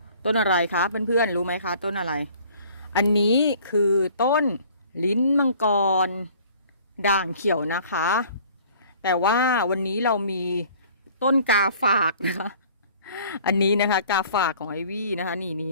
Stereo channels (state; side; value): inverted; both; correlation -0.52